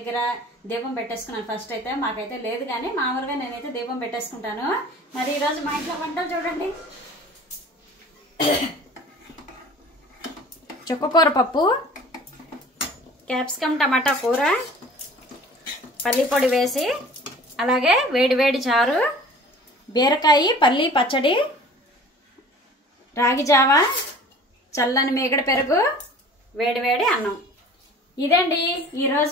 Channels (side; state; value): both; normal; correlation 0.45